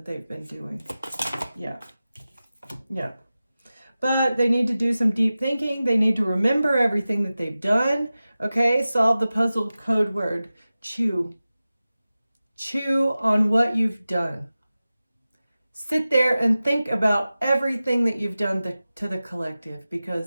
they've been doing. Yeah. Yeah. But they need to do some deep thinking. They need to remember everything that they've done. Okay, solve the puzzle code word. Chew. Chew on what you've done. Sit there and think about everything that you've done to the collective,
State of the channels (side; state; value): both; inverted; correlation -0.95